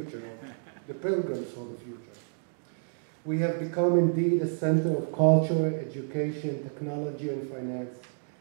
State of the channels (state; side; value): silent; left; digital silence